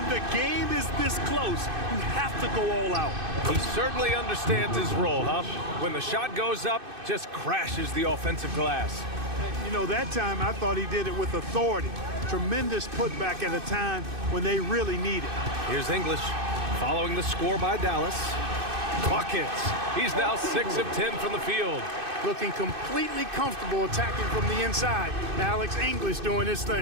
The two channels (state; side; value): late; left; 2.6 ms